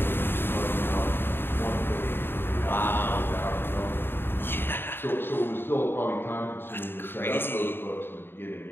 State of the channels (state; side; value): late; right; 0.10 ms